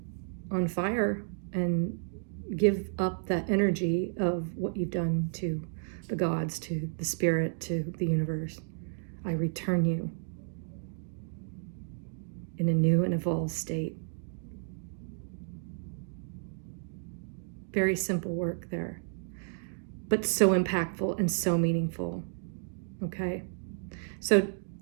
on fire and give up that energy of what you've done to the gods, to the spirit, to the universe. I return you in a new and evolved state. Very simple work there, but so impactful and so meaningful. Okay? So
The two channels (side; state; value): left; silent; digital silence